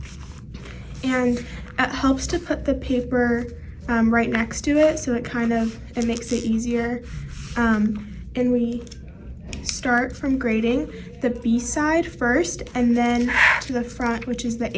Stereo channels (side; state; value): both; identical; correlation 1.00